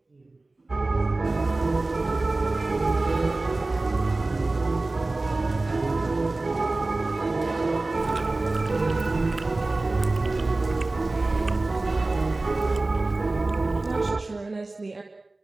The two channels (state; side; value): quieter; left; 3.1 dB